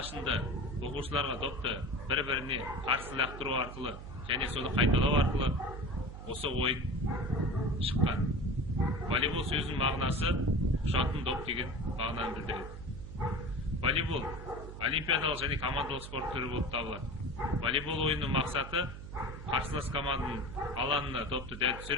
оқушыларға допты бір-біріне қарсы лақтыру арқылы және соны қайталау арқылы осы ойын шыққан. Волейбол сөзінің мағынасы ұшатын доп деген мағынаны білдіреді. Волейбол олимпиадалық және командалық спорт түрі болып табылады. Волейбол ойынның мақсаты қарсылас команданың алаңына допты дәл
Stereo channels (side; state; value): right; noise; hum, 11 dB below the sound